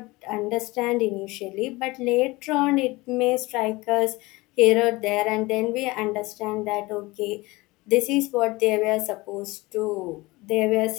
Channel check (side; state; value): right; quieter; 22.0 dB